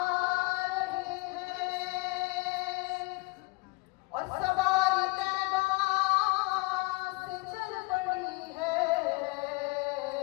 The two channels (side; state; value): right; quieter; 23.9 dB